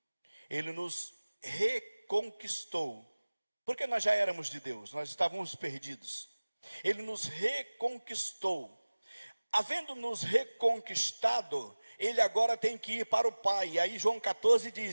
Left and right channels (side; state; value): both; inverted; correlation -1.00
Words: ele nos reconquistou, porque nós já éramos de Deus, nós estávamos perdidos. Ele nos reconquistou. Havendo nos reconquistado, ele agora tem que ir para o Pai. E aí João 14